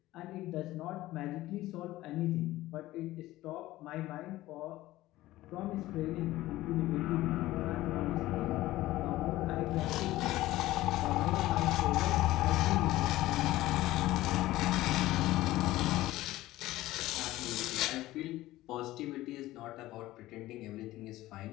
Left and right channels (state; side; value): quieter; right; 16.6 dB